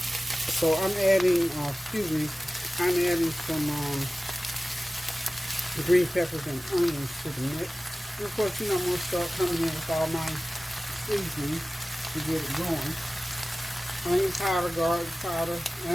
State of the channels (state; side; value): normal; both; correlation 0.96